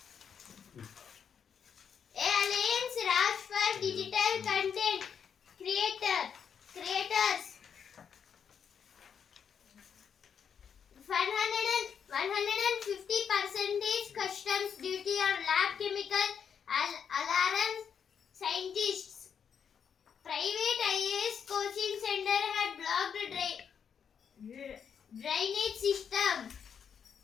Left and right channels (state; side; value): quieter; right; 7.4 dB